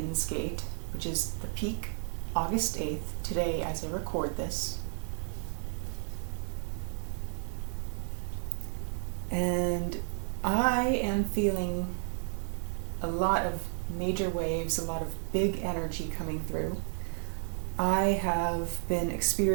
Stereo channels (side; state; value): left; silent; 56 dB below the other